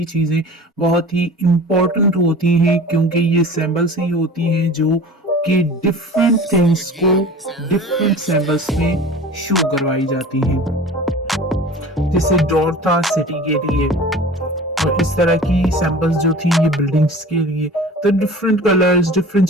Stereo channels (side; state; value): both; normal; correlation 0.40